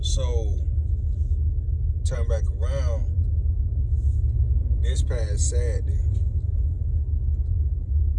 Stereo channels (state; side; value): identical; both; correlation 1.00